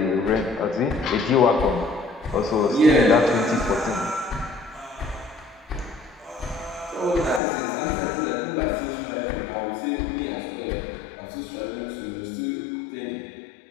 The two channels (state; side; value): drops out; right; at 7.4 s